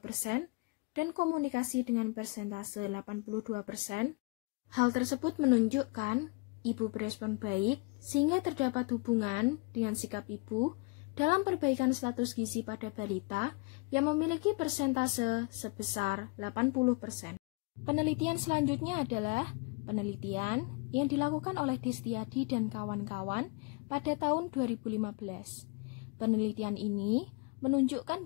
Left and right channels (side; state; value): right; quieter; 29.0 dB